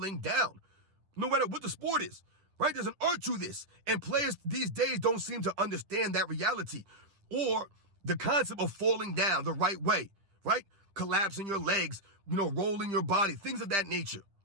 down, no matter what the sport is, right? There's an art to this. And players these days don't seem to understand that reality or the concept of falling down the right way, right? Collapsing your legs, rolling your body, things of that nature.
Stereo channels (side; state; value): left; late; 10 ms